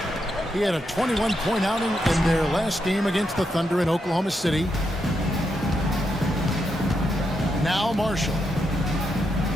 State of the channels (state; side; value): normal; both; correlation 0.83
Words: He had a 21-point outing in their last game against the Thunder in Oklahoma City. Now Marshall.